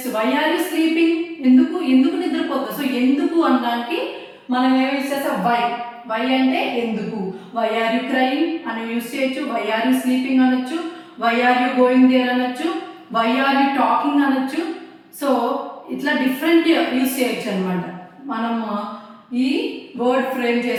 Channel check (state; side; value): identical; both; correlation 1.00